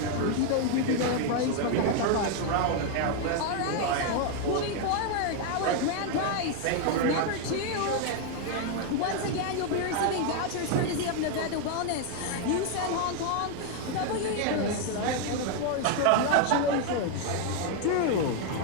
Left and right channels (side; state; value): both; different; correlation 0.00